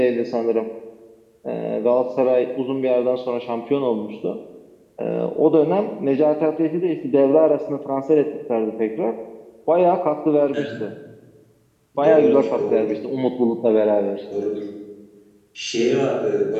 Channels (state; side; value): identical; both; correlation 1.00